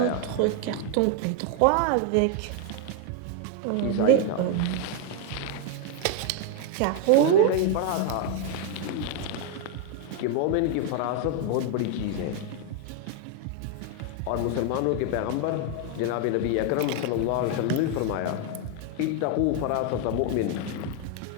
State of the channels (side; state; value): both; different; correlation 0.00